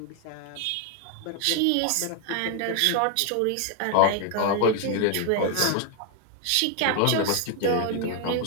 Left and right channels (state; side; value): different; both; correlation 0.00